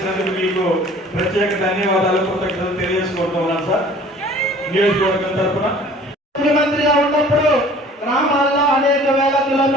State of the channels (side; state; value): both; normal; correlation 0.49